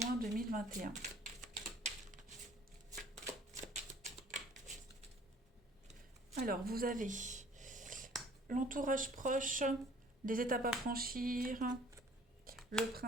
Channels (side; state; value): both; normal; correlation 0.53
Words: 2021. Alors, vous avez l'entourage proche, des étapes à franchir, le